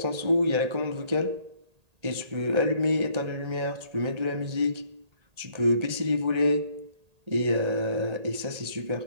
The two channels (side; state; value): left; late; 1.8 ms